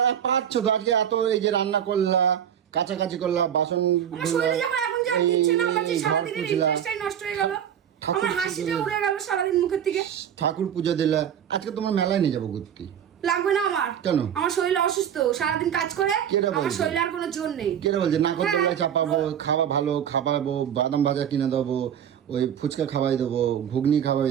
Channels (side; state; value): left; quieter; 9.1 dB